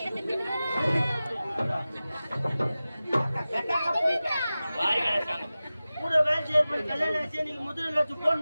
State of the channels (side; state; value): both; inverted; correlation -0.96